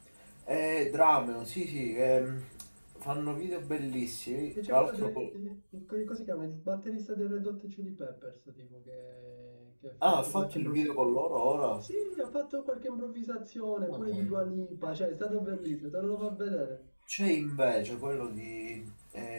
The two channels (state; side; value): inverted; both; correlation -1.00